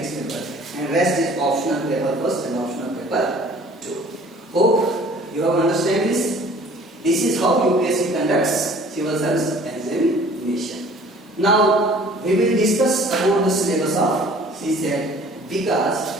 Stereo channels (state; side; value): normal; both; correlation 0.51